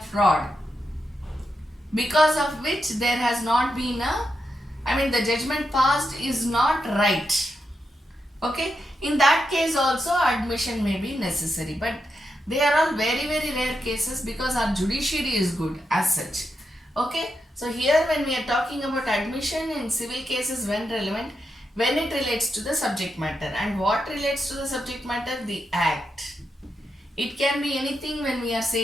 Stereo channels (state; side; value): normal; both; correlation 0.85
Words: because of which there has not been the judgment passed is not right. Okay, in that case also admission may be necessary, but they are all very rare cases because our judiciary is good as such. Okay, so here when we are talking about admission in civil cases when relevant, when it relates to the subject matter. And what relates to the subject matter? The act. It can be anything. When we are